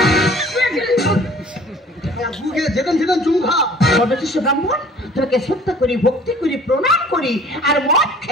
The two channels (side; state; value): both; normal; correlation 0.50